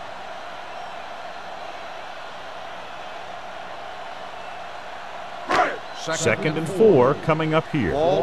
Second and 4 coming up here. Ball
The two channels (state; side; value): identical; both; correlation 1.00